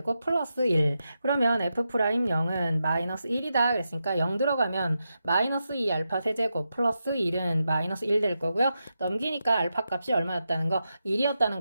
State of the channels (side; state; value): both; inverted; correlation -0.87